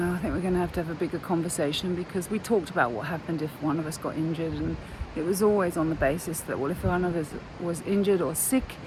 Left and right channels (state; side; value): identical; both; correlation 1.00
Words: I think we're going to have a bigger conversation because we talked about what happened if one of us got injured, and it was always on the basis that, well, if one of us was injured or sick,